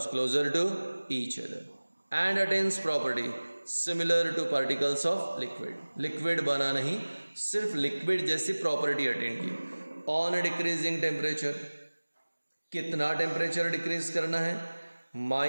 closer to each other and attains property similar to particles of liquid. Liquid बना नहीं, सिर्फ लिक्विड जैसी प्रॉपर्टी अटेंड की। ऑन डिक्रीजिंग टेम्परेचर, कितना temperature decrease करना है,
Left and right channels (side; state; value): both; inverted; correlation -1.00